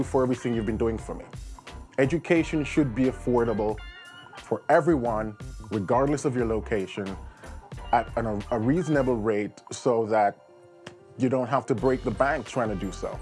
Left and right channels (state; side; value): identical; both; correlation 1.00